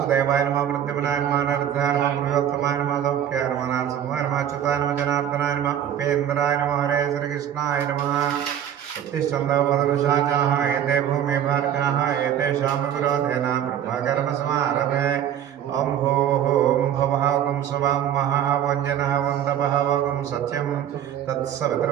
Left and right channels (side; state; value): left; quieter; 10.1 dB